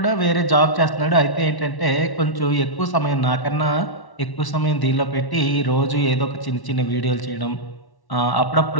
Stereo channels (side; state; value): right; late; 1.1 ms